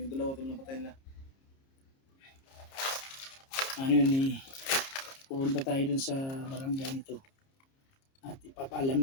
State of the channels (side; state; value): right; late; 30 ms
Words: dalawa tol na patay nila. Ano yun eh, pupunta tayo dun sa barangay nito at ipapaalam